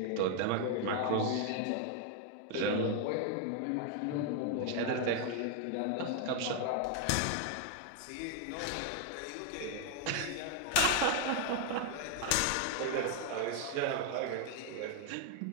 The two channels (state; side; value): different; both; correlation 0.00